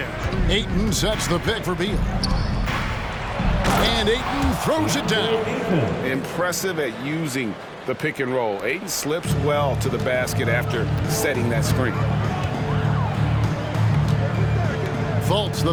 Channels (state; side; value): identical; both; correlation 1.00